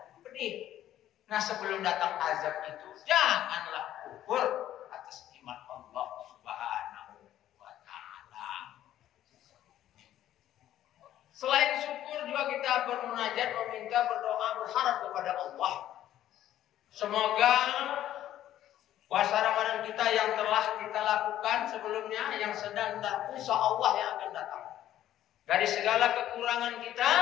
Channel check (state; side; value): quieter; right; 12.4 dB